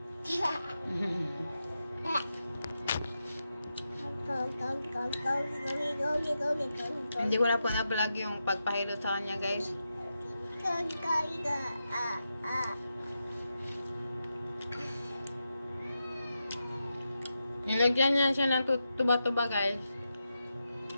Hindi ko na po na-vlog yung pagpahilot sa kanya guys. Nilagyan niya siya ng tuba-tuba guys.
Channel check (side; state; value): both; inverted; correlation -0.89